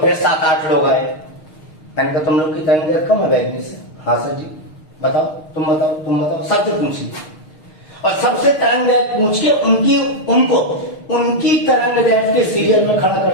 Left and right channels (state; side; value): late; right; 6.5 ms